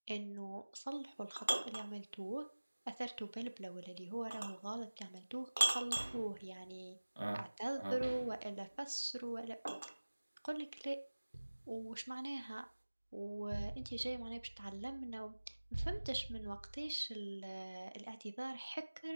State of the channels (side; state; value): both; inverted; correlation -1.00